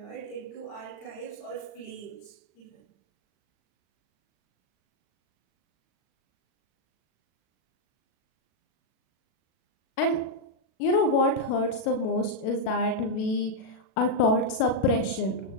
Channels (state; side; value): late; right; 37 ms